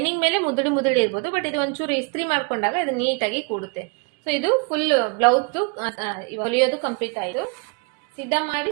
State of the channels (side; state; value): left; quieter; 32.5 dB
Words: ಮೇಲೆ ಮುದುಡಿ ಇರ್ಬೋದು, ಬಟ್ ಇದು ಒಂಚೂರು ಇಸ್ತ್ರಿ ಮಾಡ್ಕೊಂಡಾಗ ಇದು ನೀಟಾಗಿ ಕೂಡುತ್ತೆ. ಸೊ ಇದು ಫುಲ್ ಬ್ಲೌಸ್ ಹೊಲಿಯೋದು ಕಂಪ್ಲೀಟ್ ಆಯ್ತು. ಸಿದ್ಧ ಮಾಡಿ